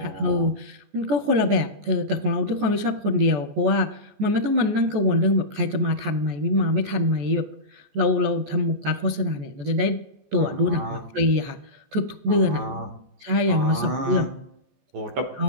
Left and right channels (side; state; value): left; late; 14 ms